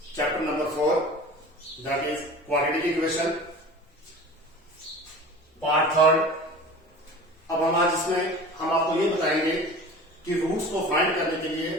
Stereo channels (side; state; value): both; normal; correlation 0.38